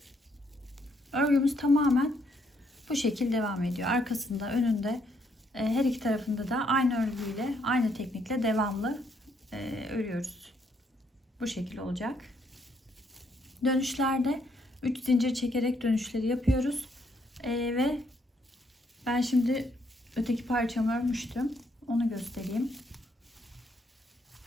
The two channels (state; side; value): normal; both; correlation 0.72